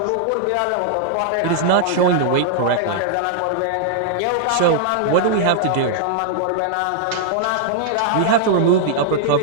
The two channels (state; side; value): different; both; correlation -0.01